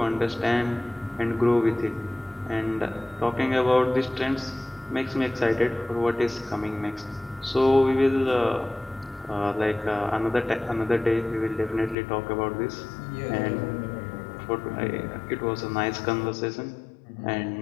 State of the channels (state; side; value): drops out; right; at 12.0 s